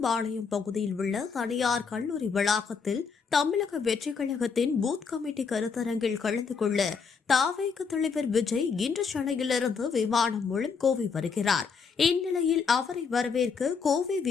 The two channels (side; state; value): right; quieter; 5.6 dB